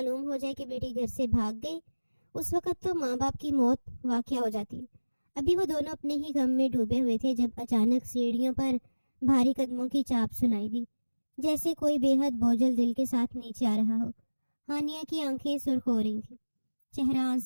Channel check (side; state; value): both; inverted; correlation -1.00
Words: ہو جائے کہ بیٹی گھر سے بھاگ گئی، اس وقت تو ماں باپ کی موت واقع ہو جاتی ہے۔ ابھی وہ دونوں اپنے ہی غم میں ڈوبے ہوئے تھے جب اچانک سیڑھیوں پر بھاری قدموں کی چاپ سنائی دی، جیسے کوئی بے حد بوجھل دل کے ساتھ نیچے آ رہا ہو۔ ہانیہ کی آنکھیں سرخ ہو رہی تھیں، چہرہ